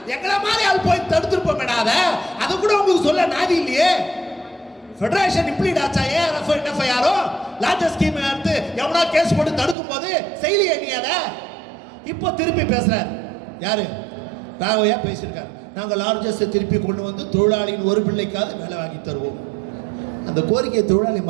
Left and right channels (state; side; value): drops out; left; at 9.8 s